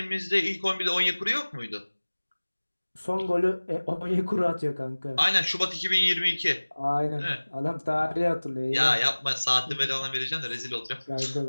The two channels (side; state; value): both; inverted; correlation -1.00